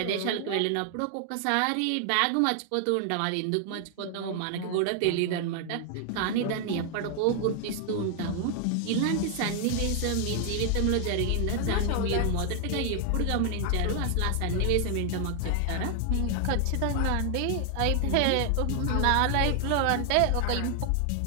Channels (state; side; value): different; both; correlation 0.00